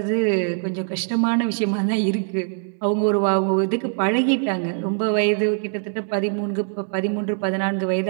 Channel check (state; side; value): silent; left; digital silence